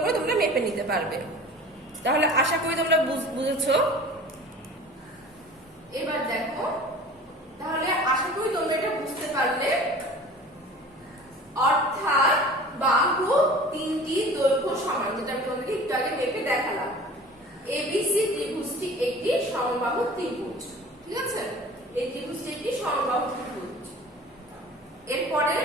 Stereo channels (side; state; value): both; normal; correlation 0.42